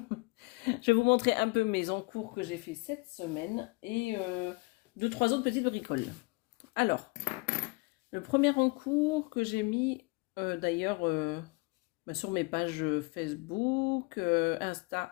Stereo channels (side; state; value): right; quieter; 26.9 dB